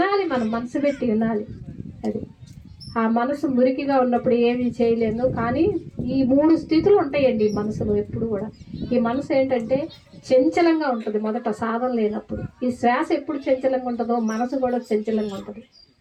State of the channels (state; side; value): identical; both; correlation 1.00